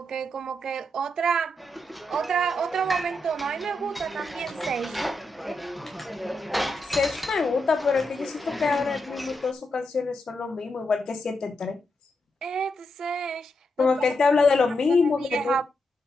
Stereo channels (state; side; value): normal; both; correlation 0.84